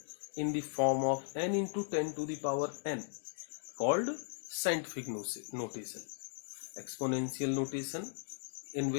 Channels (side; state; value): right; silent; digital silence